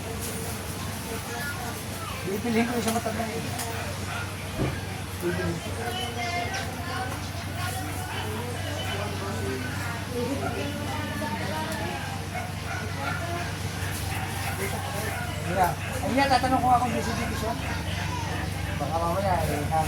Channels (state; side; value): identical; both; correlation 1.00